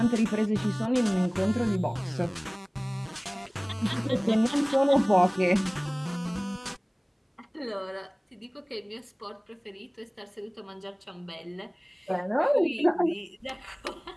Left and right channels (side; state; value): both; identical; correlation 1.00